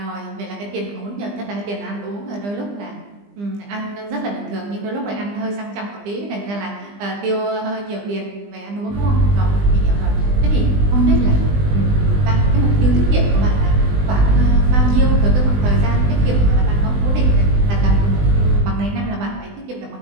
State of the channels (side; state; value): left; late; 20 ms